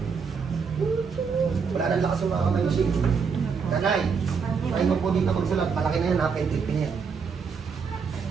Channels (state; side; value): quieter; left; 5.8 dB